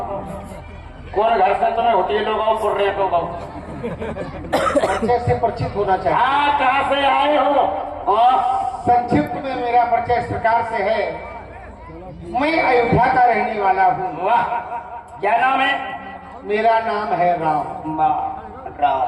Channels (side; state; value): both; identical; correlation 1.00